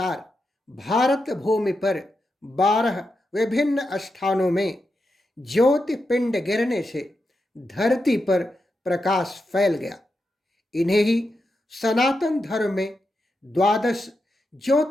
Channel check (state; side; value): normal; both; correlation 0.87